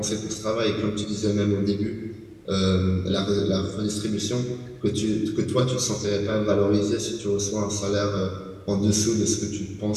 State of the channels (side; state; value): both; identical; correlation 1.00